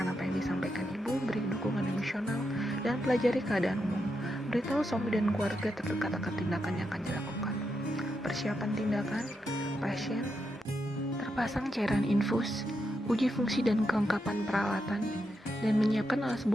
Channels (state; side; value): normal; both; correlation 0.84